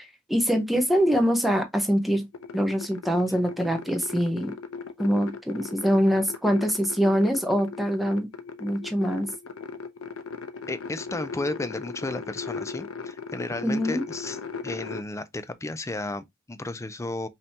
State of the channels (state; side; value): normal; both; correlation 0.86